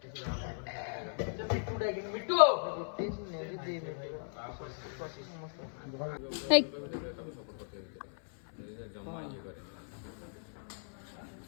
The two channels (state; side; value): silent; right; 53 dB below the other